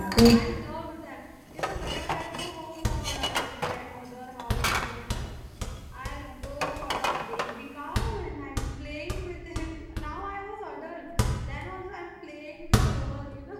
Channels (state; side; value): identical; both; correlation 1.00